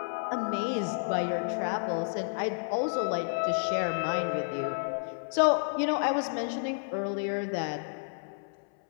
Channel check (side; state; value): right; silent; 57 dB below the other